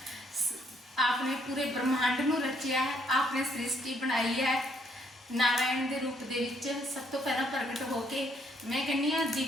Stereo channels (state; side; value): normal; both; correlation 0.69